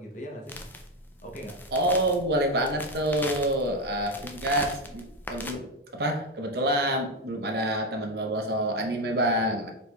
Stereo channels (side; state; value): both; normal; correlation 0.10